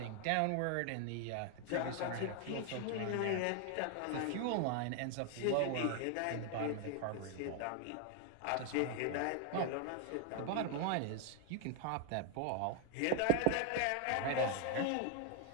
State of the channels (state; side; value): different; both; correlation 0.00